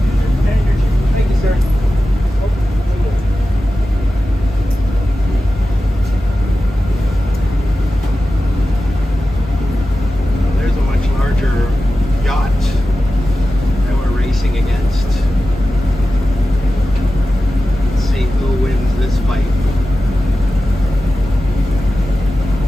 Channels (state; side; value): normal; both; correlation 0.94